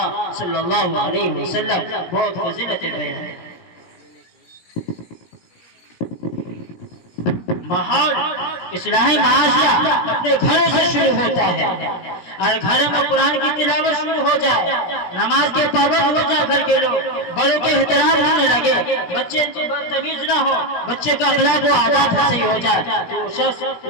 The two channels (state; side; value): late; right; 17 ms